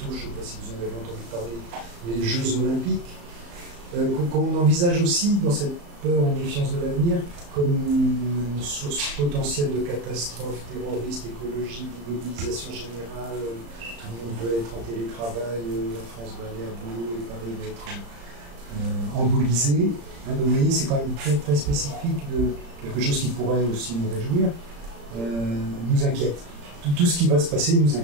je ne sais pas si vous en avez entendu parler, les Jeux Olympiques, qu'on envisage aussi dans cette peur et méfiance de l'avenir comme une source potentielle de catastrophes terroristes, écologiques, d'immobilisation générale. Tout le monde veut être en télétravail, la France va aller à boulot et Paris va être embolisé. Donc vous voyez, c'est quand même très, très spécifique de quelque chose qui pourrait aussi nous réjouir, nous inquiète. Tout ce qui va se passer nous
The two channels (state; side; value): late; left; 35 ms